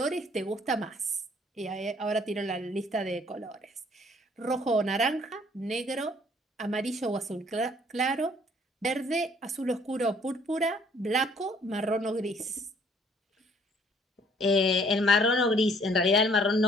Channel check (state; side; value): normal; both; correlation 0.60